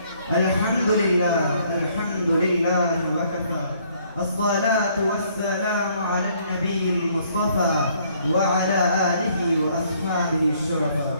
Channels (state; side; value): inverted; both; correlation -0.65